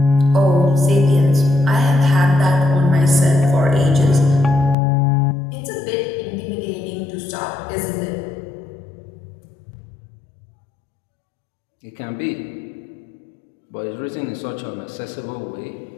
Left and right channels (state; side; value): drops out; right; at 4.8 s